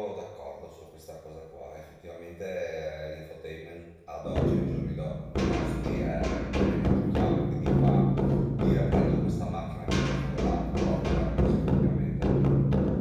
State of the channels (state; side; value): identical; both; correlation 1.00